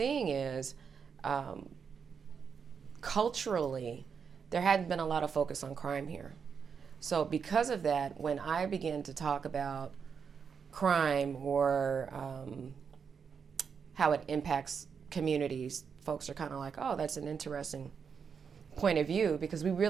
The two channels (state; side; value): quieter; left; 6.4 dB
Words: is culturally, there hadn't been a lot of focus on crime here. So because of that, when I begin to talk about crime or how it impacts communities, folks are kind of like, oh, that's an interesting point of view, because we